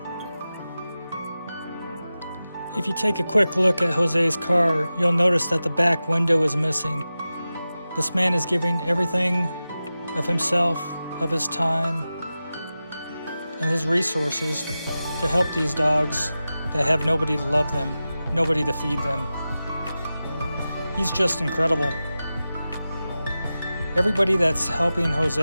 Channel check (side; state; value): both; inverted; correlation -0.94